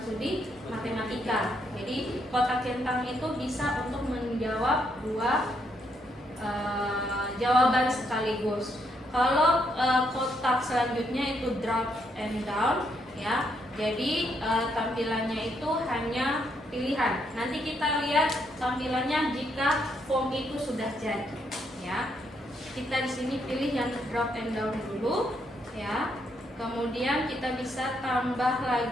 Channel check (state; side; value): normal; both; correlation 0.75